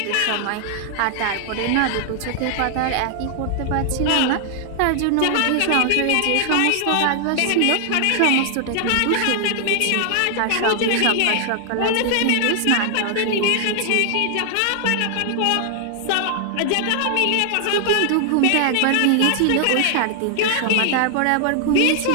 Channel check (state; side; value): different; both; correlation 0.00